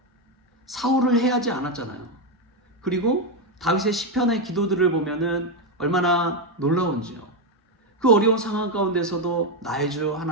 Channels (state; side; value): normal; both; correlation 0.06